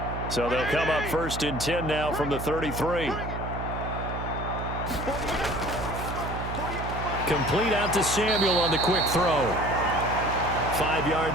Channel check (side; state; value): right; noise; hum, 6 dB below the sound